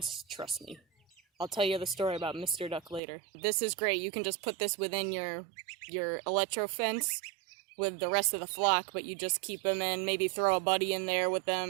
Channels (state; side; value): drops out; left; at 3.0 s